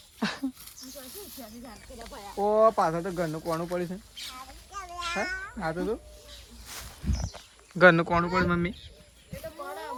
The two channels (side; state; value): both; identical; correlation 1.00